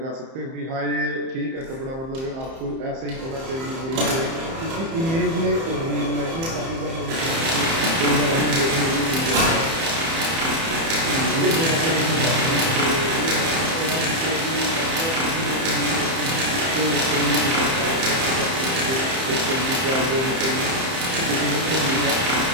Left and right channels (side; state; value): left; late; 30 ms